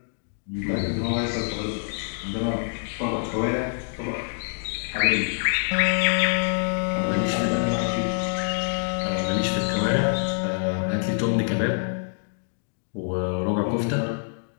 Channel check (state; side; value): silent; right; digital silence